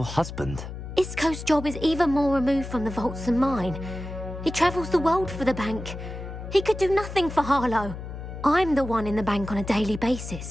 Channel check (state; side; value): noise; left; hum, 9 dB below the sound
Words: husband? Isco's job is even more removed from the vaults than mine. He travels the world for the bank. He could do nothing for Harlow. I'm the one in the bank on a daily